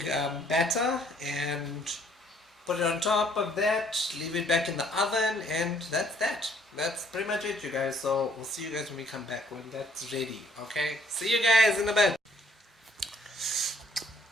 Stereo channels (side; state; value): both; normal; correlation 0.63